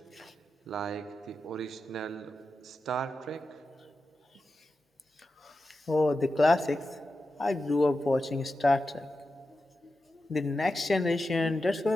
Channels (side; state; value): both; normal; correlation 0.91